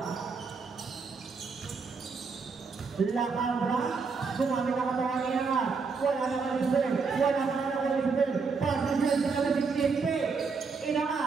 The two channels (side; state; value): left; quieter; 4.9 dB